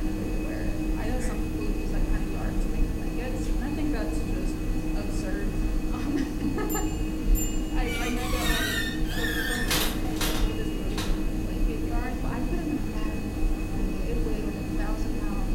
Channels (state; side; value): identical; both; correlation 1.00